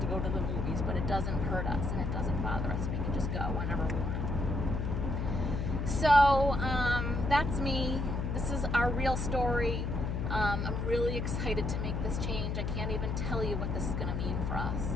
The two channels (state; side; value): noise; left; hum, 1 dB below the sound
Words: go to the movies, but it doesn't hurt us and it doesn't bother us. We can just go whenever we want. So that's me. This is our real story. I'm really excited to make this change. I can't even tell you what this is going to mean for us.